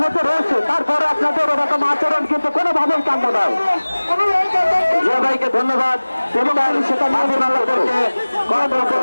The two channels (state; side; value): inverted; both; correlation -1.00